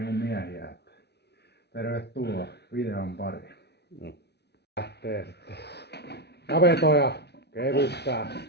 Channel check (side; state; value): right; late; 0.49 ms